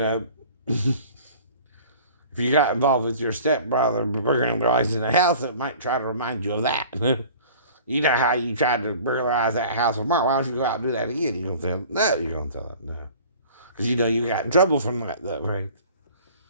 you got involved with your stepbrother burglarizing the house, it might try to remind you of that. You know how you tried to burglarize that house with Mark. Why don't you go out and do that again? You're going to tell them? No, you're going to tell them no. Because you know you got in trouble from that, though, right?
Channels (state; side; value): inverted; both; correlation -0.45